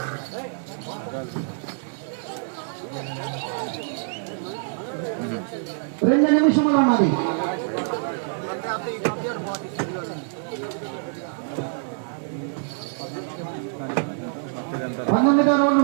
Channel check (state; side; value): silent; left; digital silence